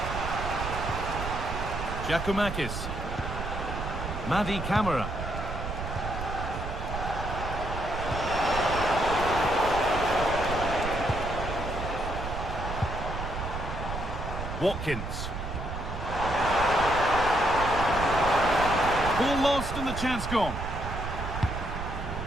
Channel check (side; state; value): right; noise; rumble, 6 dB below the sound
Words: Giacomakis. Madi Camara. Watkins. Ball lost and the chance gone.